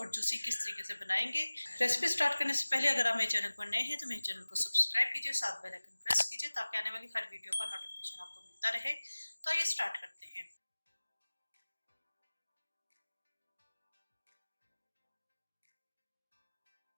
जूसी किस तरीके से बनाएंगे। रेसिपी स्टार्ट करने से पहले अगर आप मेरे चैनल पर नए हैं तो मेरे चैनल को सब्सक्राइब कीजिए, साथ बेल आइकन प्रेस कीजिए ताकि आने वाली हर वीडियो का नोटिफिकेशन आपको मिलता रहे। तो आइए स्टार्ट करते हैं।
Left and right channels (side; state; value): both; inverted; correlation -1.00